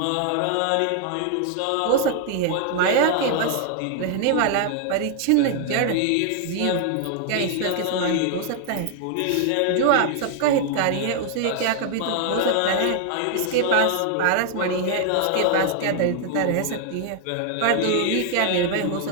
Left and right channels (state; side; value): different; both; correlation 0.00